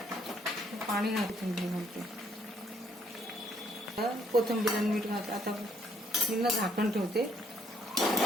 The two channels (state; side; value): normal; both; correlation 0.67